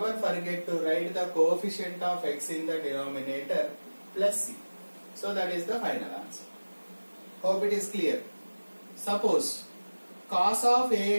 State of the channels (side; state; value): both; inverted; correlation -1.00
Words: forget to write the coefficient of x in the denominator plus c. So that is the final answer. Hope it is clear. Suppose cos of